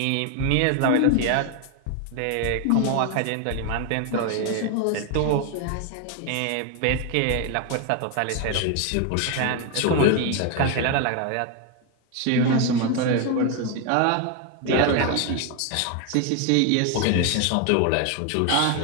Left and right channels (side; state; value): both; different; correlation 0.01